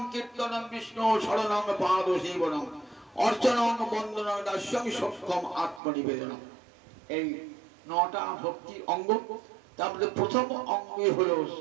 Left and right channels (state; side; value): drops out; left; at 5.8 s